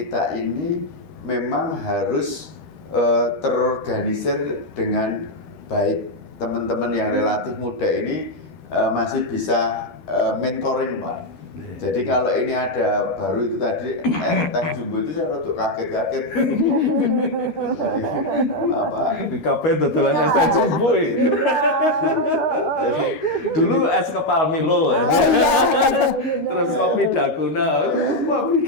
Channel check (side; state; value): right; late; 13 ms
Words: ini memang harus terorganisir dengan baik. Teman-teman yang relatif muda ini masih bisa mentoring, Pak. Jadi kalau ini ada baru itu tadi teh jumbo itu saya rada kaget-kaget. Kabeh dodolan es teh jumbo itu. Jadi dulu es kepal Milo, terus kopi Dalgona, wah